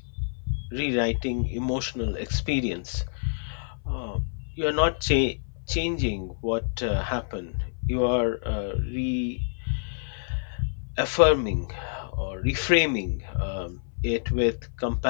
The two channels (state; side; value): silent; right; 60 dB below the other